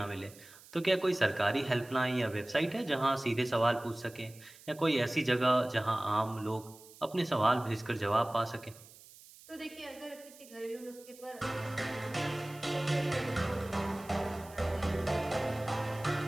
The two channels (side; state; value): right; noise; hiss, 21 dB below the sound